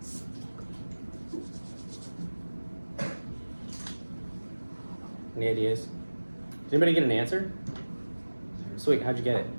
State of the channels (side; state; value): both; inverted; correlation -1.00